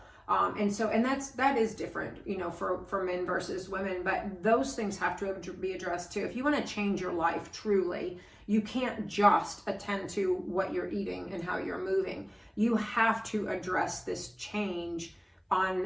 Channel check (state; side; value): identical; both; correlation 1.00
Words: And that is different, you know, for men versus women, but those things have to be addressed too. If you want to change your life truly, you can't just attend to what you're eating and how you're moving. You have to address this change